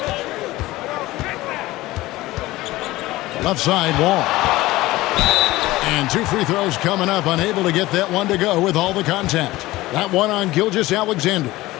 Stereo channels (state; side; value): quieter; right; 18.2 dB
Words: Left side, Wall. And 2 free throws coming up, unable to get that one to go with all the contact. That one on Gilgeous-Alexander.